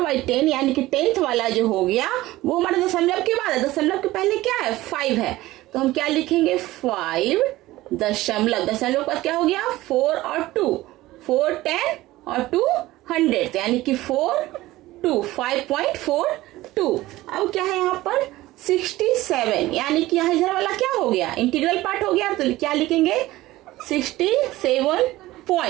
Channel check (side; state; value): left; quieter; 17.3 dB